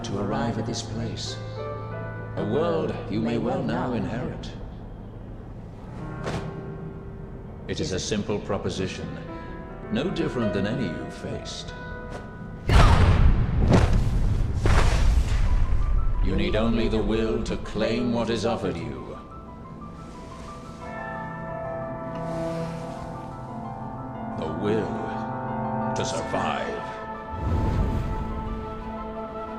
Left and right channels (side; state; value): both; identical; correlation 1.00